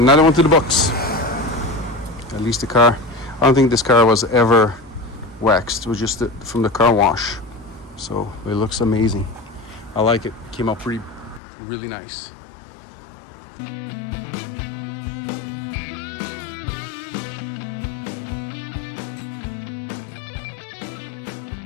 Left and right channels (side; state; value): right; drops out; at 11.4 s